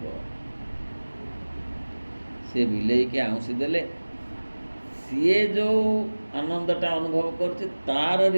ସେ ବିଲେଇକି ଆଉଁସି ଦେଲେ ସିଏ ଯେଉଁ ଆନନ୍ଦଟା ଅନୁଭବ କରୁଛି ତାର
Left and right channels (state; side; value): inverted; both; correlation -1.00